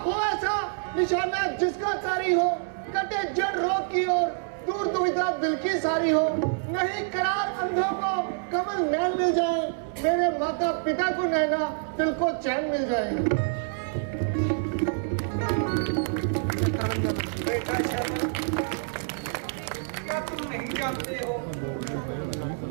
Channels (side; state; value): left; silent; 60 dB below the other